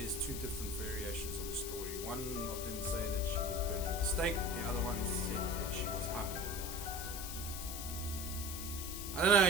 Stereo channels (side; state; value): left; noise; hiss, 7 dB below the sound